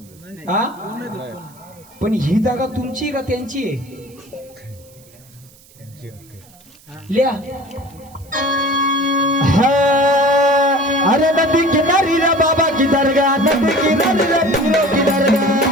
हा पण ही जागा तुमची का त्यांची आहे? लिहा. अरे नदी किनारी रे बाबा की दरगाह. नदी किनारी रे पीरो की दरगाह.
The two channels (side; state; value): right; noise; hiss, 26 dB below the sound